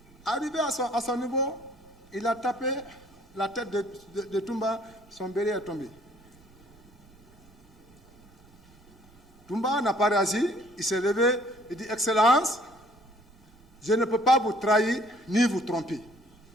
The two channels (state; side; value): noise; right; rumble, 27 dB below the sound